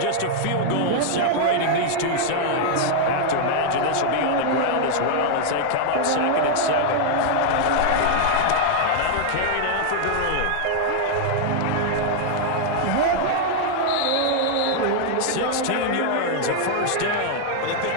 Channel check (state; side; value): different; both; correlation 0.00